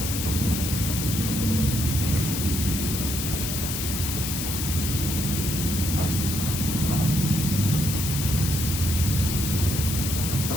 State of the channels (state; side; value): noise; left; hiss, 3 dB below the sound